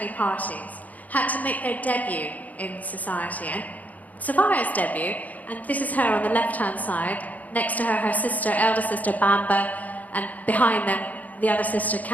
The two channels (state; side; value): late; right; 0.077 ms